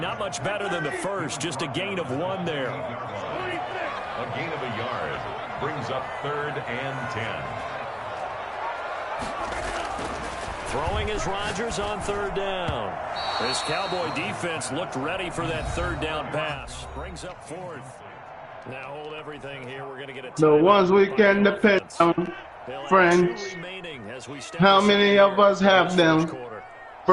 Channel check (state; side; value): identical; both; correlation 1.00